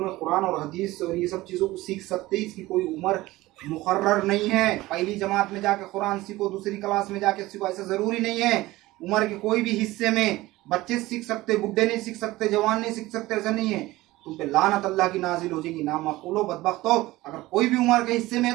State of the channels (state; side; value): quieter; left; 18.4 dB